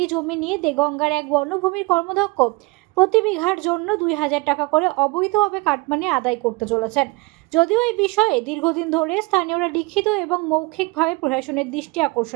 জমি নিয়ে দেগঙ্গার এক বনভূমির কর্মদক্ষ প্রতি বিঘার জন্য 2000 টাকা করে অবৈধভাবে কাটমানি আদায় করতে চলেছেন। যদিও এই বিষয়ে দীর্ঘদিন ধরে স্থানীয়রা লিখিত এবং মৌখিকভাবে প্রশাসনের দৃষ্টি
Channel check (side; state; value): left; quieter; 24.6 dB